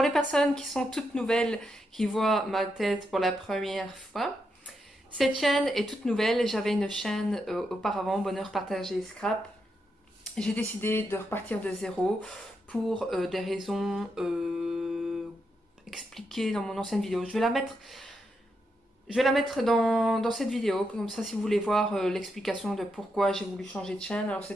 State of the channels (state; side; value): normal; both; correlation 0.83